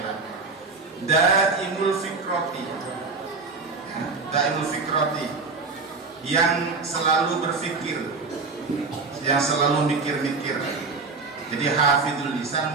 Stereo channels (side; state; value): left; quieter; 4.2 dB